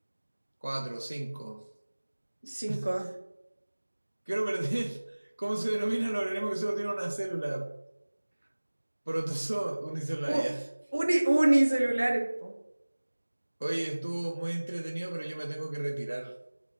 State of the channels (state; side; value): inverted; both; correlation -1.00